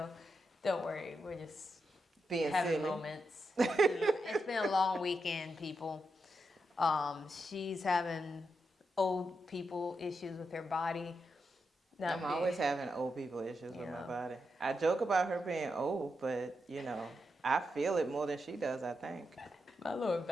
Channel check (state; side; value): normal; both; correlation 0.85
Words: don't worry. We're just being having silly moments. It's been a long weekend, people. She's having old people issues with her body. I'm always having old people issues with my body. I joke about her being old, but I feel it more than she does, I think. My lower